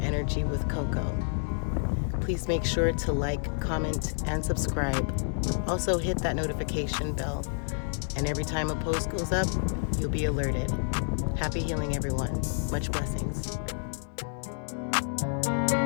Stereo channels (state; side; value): silent; right; 58 dB below the other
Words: Energy with Coco. Please make sure to like, comment, and subscribe. Also hit that notification bell, and every time a post goes up, you'll be alerted. Happy healing, everyone. Much blessings.